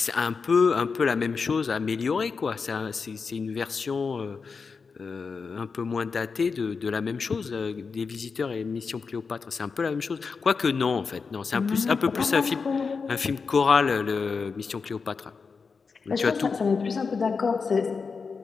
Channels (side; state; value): right; quieter; 5.1 dB